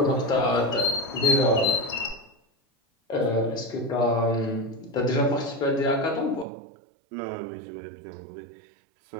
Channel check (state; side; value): drops out; left; at 6.5 s